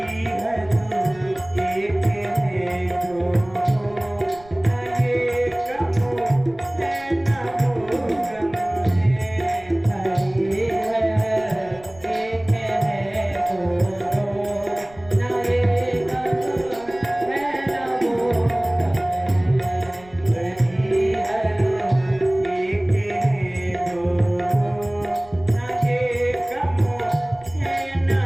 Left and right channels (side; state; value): right; noise; rumble, 24 dB below the sound